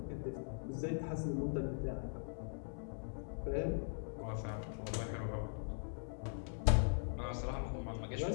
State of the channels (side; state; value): right; silent; digital silence